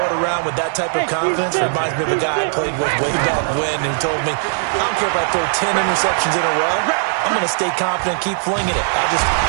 it around with that type of confidence reminds me of a guy I played with way back when who told me, I don't care if I throw 10 interceptions in a row. I'm going to stay confident, keep flinging it.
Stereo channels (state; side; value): silent; left; digital silence